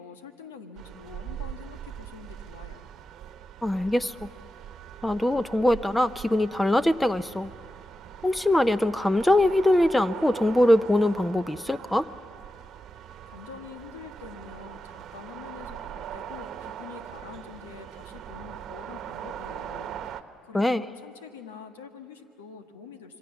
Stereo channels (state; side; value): normal; both; correlation 0.91